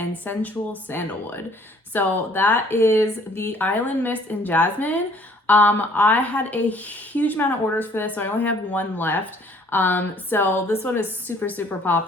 Sensual Sandalwood. So that is the Island Mist and Jasmine. I had a huge amount of orders for this, so I only have one left. So this one is super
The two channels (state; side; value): normal; both; correlation 0.58